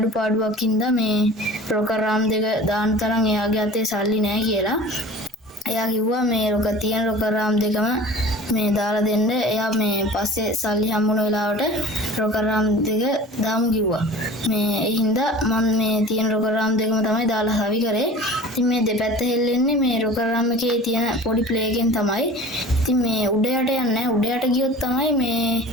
හින්දා මේ ප්‍රෝග්‍රෑම් දෙක දාන තරම් එයාගේ අතේ සල්ලි නැහැ කියලා. එයා කිව්වා මේ රොක තියෙන රොකරාම් දෙකම මේ දාලා දෙන්න. එයා මේ පස්සේ සල්ලි හම්බුන වෙලාවට රොකරාම් දෙක දාමු කිව්වා. මේ ඒ හින්දා මම මේ තියෙන රොකරාම් දෙකම තමයි දාලා හවි කරේ. ඉතින් මේ දෙපැත්ත හෙල්ලෙන්නේ මේ රොකරාම් එකේ තියෙන පොඩි ප්ලේ එකෙන් තමයි. ඉතින් මේ උඩ යට යන්නේ උඩ යට ගියොත් තමයි මේ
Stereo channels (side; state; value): both; normal; correlation 0.41